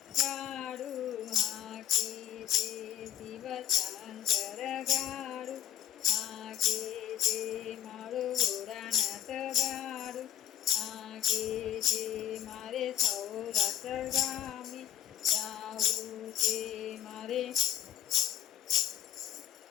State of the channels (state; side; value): quieter; right; 11.3 dB